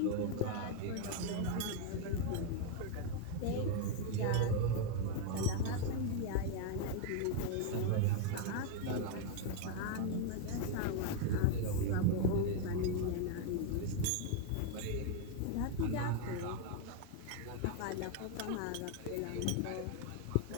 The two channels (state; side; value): different; both; correlation 0.00